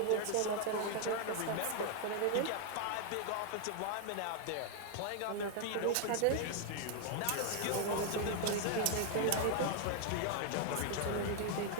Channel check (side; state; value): both; different; correlation 0.00